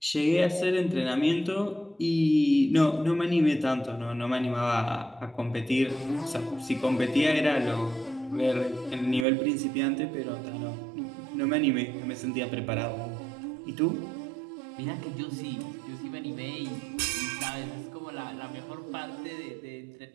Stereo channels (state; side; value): drops out; left; at 9.2 s